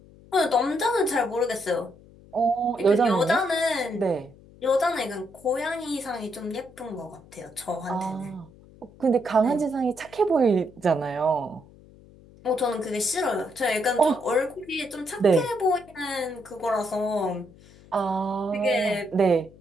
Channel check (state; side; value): noise; left; hum, 24 dB below the sound